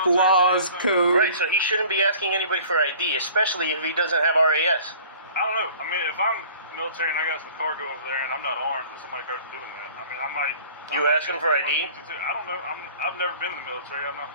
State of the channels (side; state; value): both; inverted; correlation -0.48